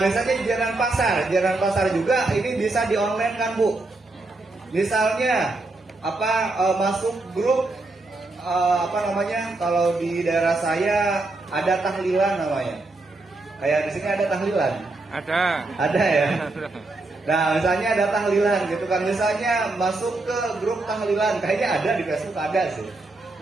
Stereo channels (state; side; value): quieter; left; 3.1 dB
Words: biasanya jajanan pasar juga ini bisa di online kan Bu. Misalnya masuk grup kalau di daerah saya ada tahlilan namanya. Kayak di sini ada tahlilan. Ada ya. Nah misalnya ada tahlilan gitu kan, misalnya masuk ke grup tahlilan, kayaknya ada di Facebook ada sih.